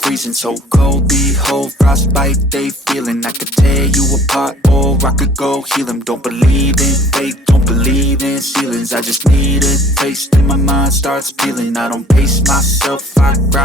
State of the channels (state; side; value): normal; both; correlation 0.54